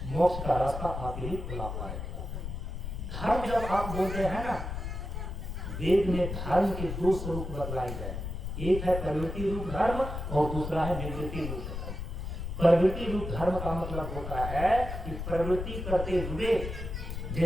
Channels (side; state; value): left; noise; rumble, 6 dB below the sound